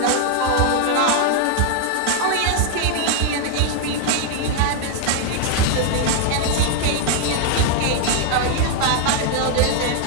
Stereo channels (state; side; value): different; both; correlation 0.00